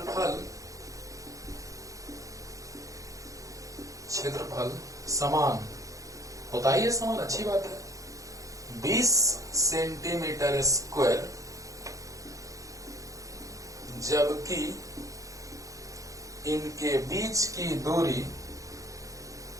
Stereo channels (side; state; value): left; late; 0.16 ms